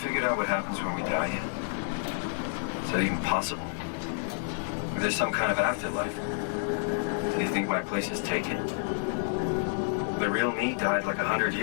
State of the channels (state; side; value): silent; right; digital silence